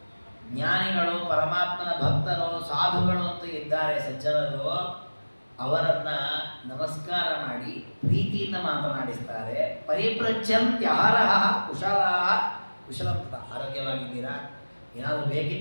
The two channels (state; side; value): inverted; both; correlation -1.00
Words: ಜ್ಞಾನಿಗಳು, ಪರಮಾತ್ಮನ ಭಕ್ತರು, ಸಾಧುಗಳು ಅಂತ ಇದ್ದಾರೆ ಸಜ್ಜನರು, ಅವರನ್ನ ನಮಸ್ಕಾರ ಮಾಡಿ ಪ್ರೀತಿಯಿಂದ ಮಾತನಾಡಿಸ್ತಾರೆ. ಪರಿಪ್ರಚ್ಛಂತ್ಯಹರಃ ಕುಶಲಂ ತಥಾ. ಆರೋಗ್ಯವಾಗಿದ್ದೀರಾ, ಏನಾದರೂ